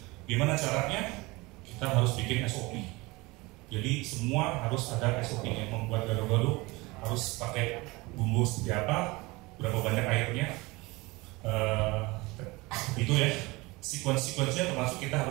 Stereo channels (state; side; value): quieter; left; 23.2 dB